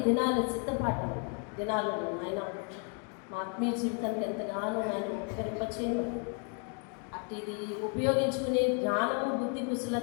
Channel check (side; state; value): right; quieter; 39.5 dB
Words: దినాల సిద్ధపాటు దినాలను ఆయన మా ఆత్మీయ జీవితానికి ఎంతగానో ఆయన ఉపకరింపచేయమని, అట్టిది ఉపయోగించుకునే జ్ఞానము బుద్ధి